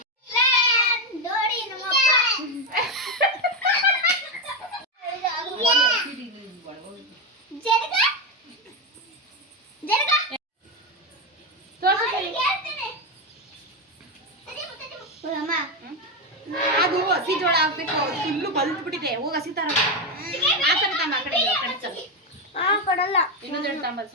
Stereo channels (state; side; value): normal; both; correlation 0.09